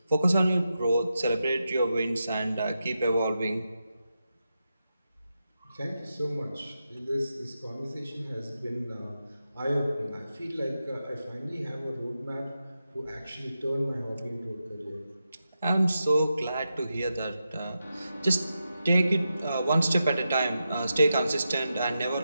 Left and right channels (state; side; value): inverted; both; correlation -0.88